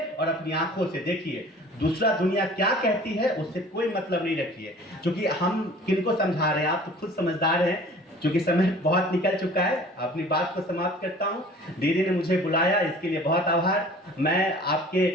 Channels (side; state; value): both; normal; correlation 0.47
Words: और अपनी आंखों से देखिए। दूसरा दुनिया क्या कहती है उससे कोई मतलब नहीं रखिए, क्योंकि हम किनको समझा रहे हैं, आप तो खुद समझदार हैं। क्योंकि समय बहुत निकल चुका है, अपनी बात को समाप्त करता हूं। दीदी ने मुझे बुलाया, इसके लिए बहुत आभार। मैं आपके